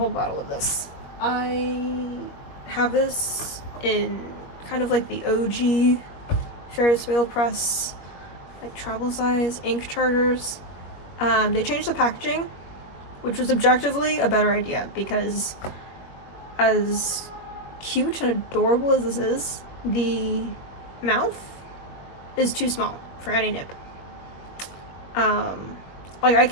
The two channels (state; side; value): late; right; 21 ms